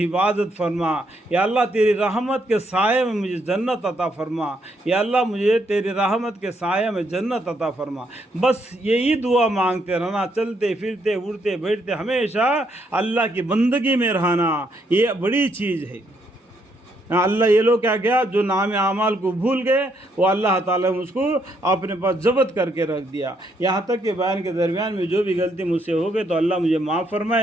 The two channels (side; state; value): both; normal; correlation 0.74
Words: حفاظت فرما، یا اللہ تیری رحمت کے سائے میں مجھے جنت عطا فرما، یا اللہ مجھے تیری رحمت کے سائے میں جنت عطا فرما. بس یہی دعا مانگتے رہنا، چلتے پھرتے اٹھتے بیٹھتے ہمیشہ اللہ کی بندگی میں رہنا، یہ بڑی چیز ہے۔ اللہ یہ لوگ کیا کیا، جو نام اعمال کو بھول گئے، وہ اللہ تعالیٰ نے اس کو اپنے پاس ضبط کر کے رکھ دیا۔ یہاں تک کہ بیان کے درمیان میں جو بھی غلطی مجھ سے ہو گئی تو اللہ مجھے معاف